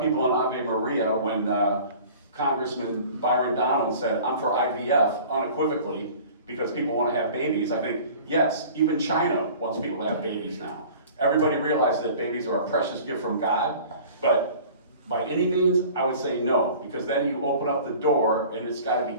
people in Ave Maria, when Congressman Byron Donald said, I'm for IVF, unequivocally, because people want to have babies. I think, yes, even China wants people to have babies now. Everybody realizes that babies are a precious gift from God, but by any means, I would say no, because then you open up the door, and it's got to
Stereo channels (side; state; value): both; inverted; correlation -0.45